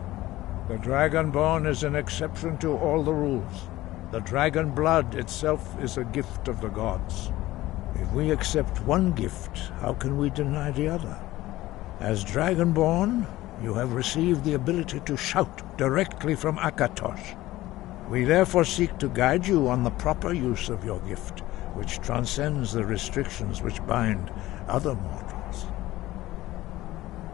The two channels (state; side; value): quieter; right; 16.8 dB